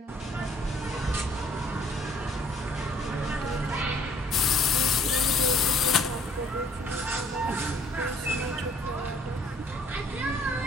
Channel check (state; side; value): normal; both; correlation 0.58